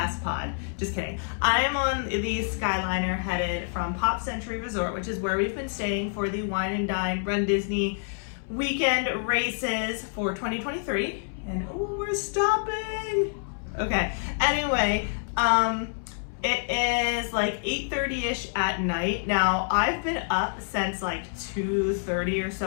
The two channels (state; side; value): silent; right; 60 dB below the other